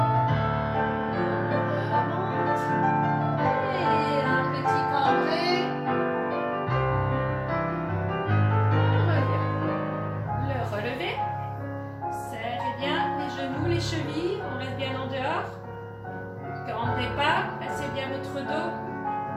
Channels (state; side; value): identical; both; correlation 1.00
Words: Remonte. Et un petit cambré. On revient. Le relevé. Serrez bien les genoux, les chevilles. On reste bien en dehors. Cambrez pas. Placez bien votre dos.